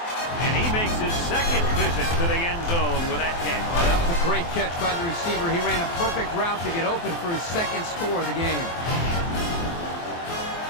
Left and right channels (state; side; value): late; right; 23 ms